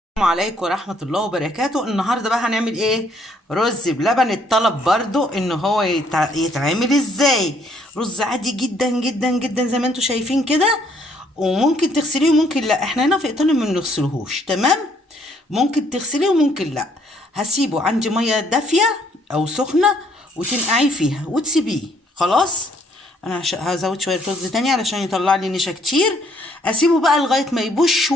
السلام عليكم ورحمة الله وبركاته. النهاردة بقى هنعمل ايه؟ رز بلبن. الطلب برضو ان هو يتعمل ازاي. رز عادي جدا جدا جدا زي ما انتوا شايفين كده، وممكن تغسليه وممكن لا. احنا هنا في ايطاليا ما بنغسلهوش، تمام؟ ممكن تغسليه وممكن لا. هسيبه عندي مية دافية او سخنة وتنقعيه فيها وتسيبيه. خلاص، انا هزود شوية رز تاني علشان يطلع لي نشا كتير. اسيبه بقى لغاية ما يبوش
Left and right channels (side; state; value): both; normal; correlation 0.66